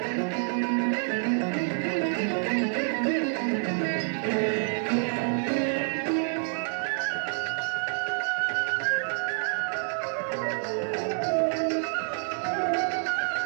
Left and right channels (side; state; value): left; silent; 59 dB below the other